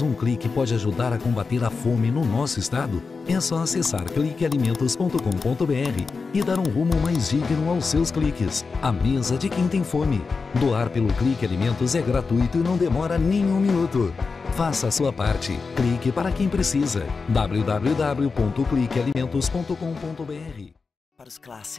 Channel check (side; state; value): right; quieter; 4.6 dB